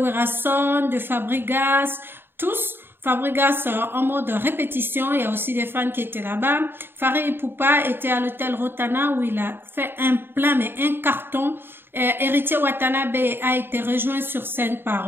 de Fabregas, tous. Fabregas en mode répétition, il y a aussi des fans qui étaient là-bas. Fally Ipupa était à l'hôtel Rotana où il a fait un plein, mais un carton. Heritier Watanabe a été rejoint sur scène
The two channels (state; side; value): late; left; 0.10 ms